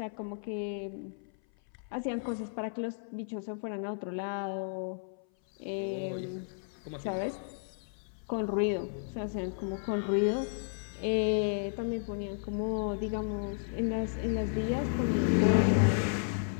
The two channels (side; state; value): right; silent; 56 dB below the other